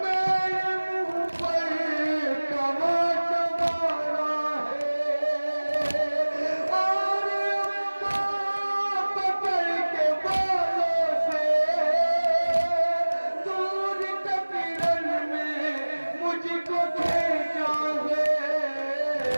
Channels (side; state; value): both; inverted; correlation -1.00